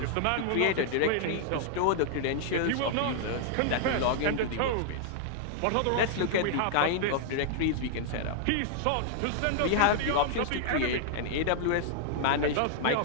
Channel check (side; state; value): both; different; correlation -0.01